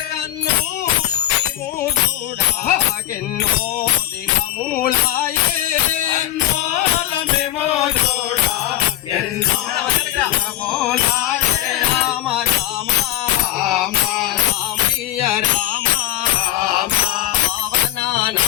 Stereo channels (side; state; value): right; quieter; 13.4 dB